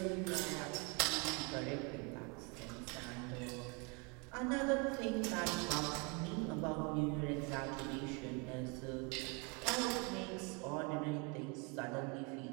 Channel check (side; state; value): left; quieter; 32.1 dB